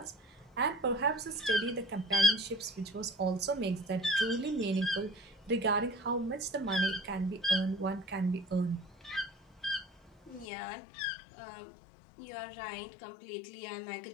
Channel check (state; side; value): drops out; right; at 10.5 s